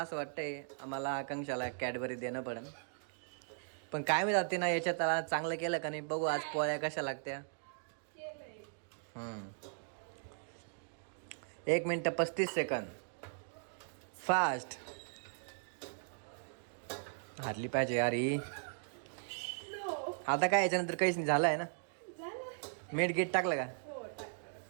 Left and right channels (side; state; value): left; silent; digital silence